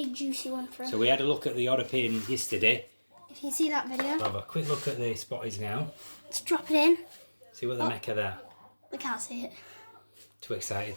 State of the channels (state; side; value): inverted; both; correlation -1.00